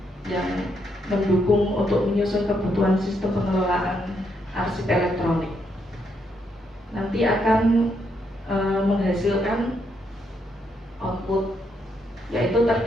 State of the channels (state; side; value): normal; both; correlation 0.77